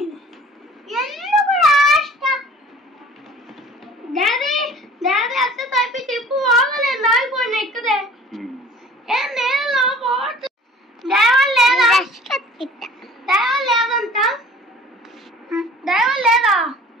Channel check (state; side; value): normal; both; correlation 0.48